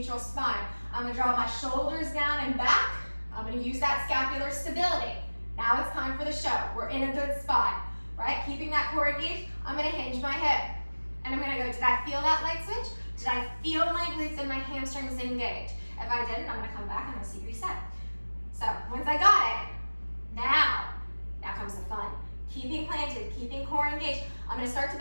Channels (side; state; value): both; inverted; correlation -1.00